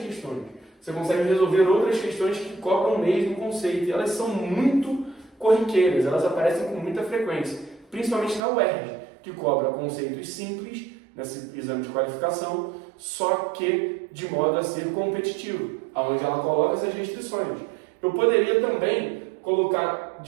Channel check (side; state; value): left; drops out; at 8.4 s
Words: Você consegue resolver outras questões que cobram o mesmo conceito. E elas são muito corriqueiras, elas aparecem com muita frequência. Principalmente na UERJ, que cobra conceitos simples, nesse exame de qualificação, só que de modo a ser competitivo, onde ela coloca essas restrições. Eu poderia também colocar